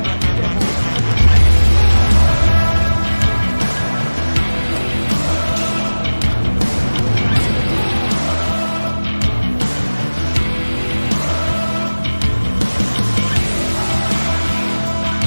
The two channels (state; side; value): inverted; both; correlation -1.00